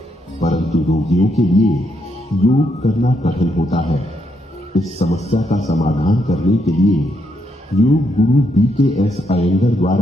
परंतु रोगियों के लिए योग करना कठिन होता है। इस समस्या का समाधान करने के लिए योग गुरु BKS अयंगर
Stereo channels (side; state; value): both; normal; correlation 0.77